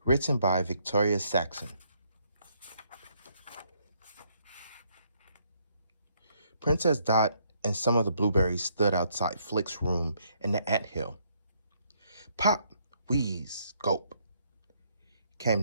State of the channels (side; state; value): both; inverted; correlation -0.71